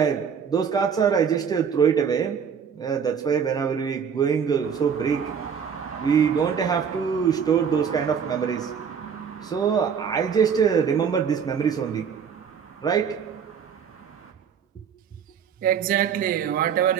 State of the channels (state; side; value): quieter; left; 7.1 dB